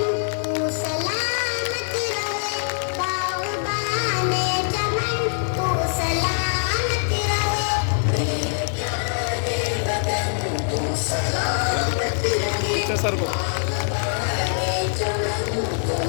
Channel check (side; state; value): right; silent; digital silence